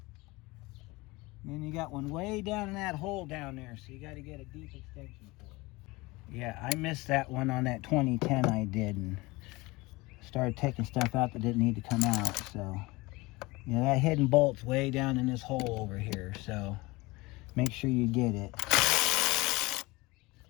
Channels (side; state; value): right; quieter; 22.6 dB